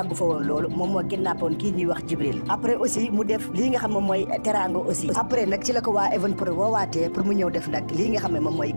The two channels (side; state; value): both; inverted; correlation -1.00